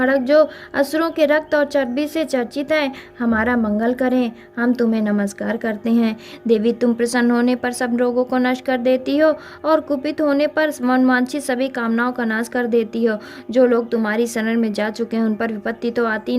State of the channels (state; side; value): identical; both; correlation 1.00